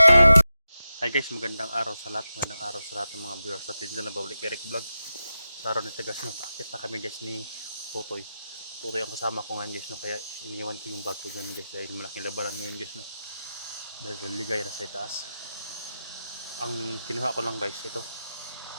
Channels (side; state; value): both; inverted; correlation -0.91